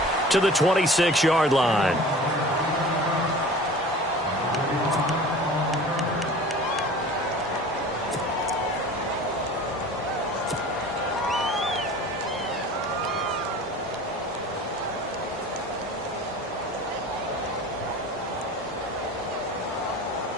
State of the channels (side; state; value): both; normal; correlation 0.41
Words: to the 26-yard line.